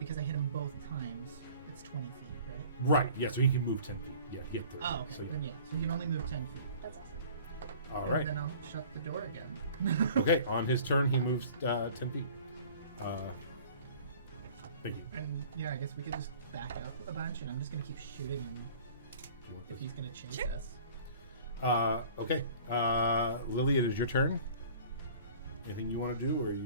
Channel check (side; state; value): both; inverted; correlation -0.47